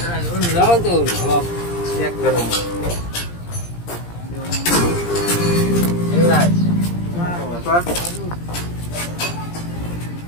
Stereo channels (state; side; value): late; right; 17 ms